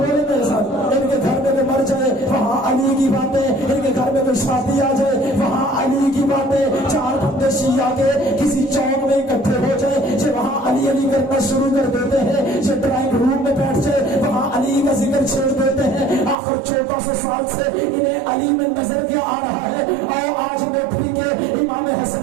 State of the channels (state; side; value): drops out; left; at 16.4 s